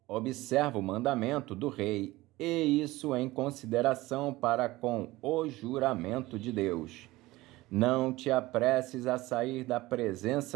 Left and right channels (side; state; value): left; quieter; 19.0 dB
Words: observa o mandamento do rei, e isso em consideração para com o juramento de Deus. Não te apresses a sair da